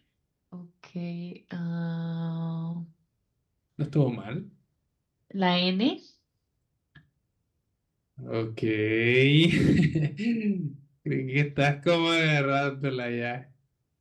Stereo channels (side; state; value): both; identical; correlation 1.00